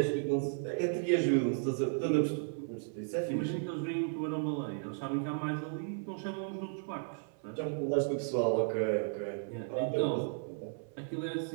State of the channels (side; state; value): left; silent; 55 dB below the other